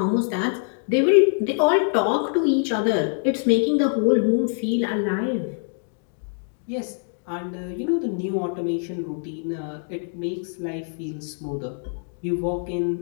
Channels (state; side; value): silent; right; 62 dB below the other